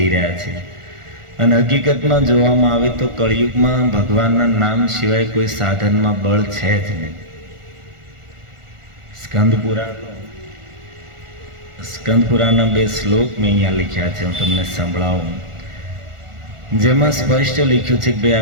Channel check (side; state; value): left; late; 1.4 ms